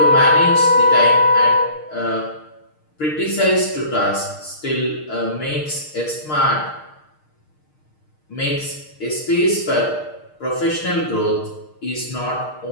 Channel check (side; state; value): right; late; 6.5 ms